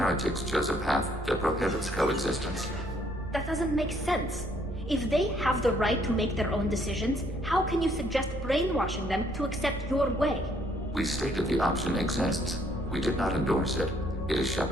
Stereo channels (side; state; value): both; normal; correlation 0.66